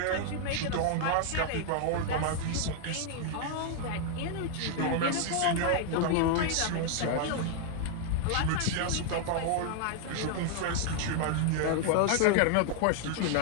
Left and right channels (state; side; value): different; both; correlation 0.00